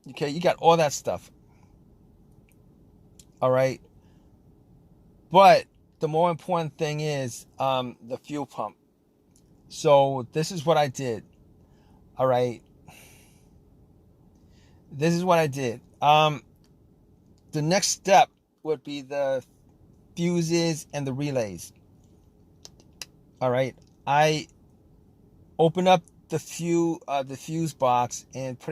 Okay, you got all that stuff. All right, but the more important thing is the fuel pump. So this is what I did. All right, this is what I did. The next step would be the fuses and the relays. All right, I opened up the fuse box and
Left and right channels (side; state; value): both; identical; correlation 1.00